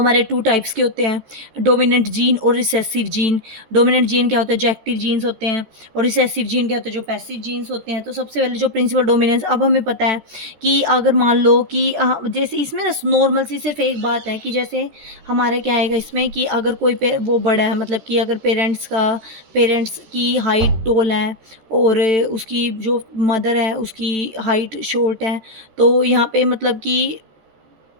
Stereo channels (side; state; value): left; late; 14 ms